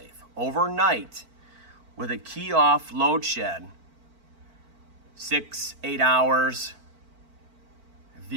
Overnight, with a key off load shed, 6-8 hours,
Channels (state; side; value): late; left; 4.5 ms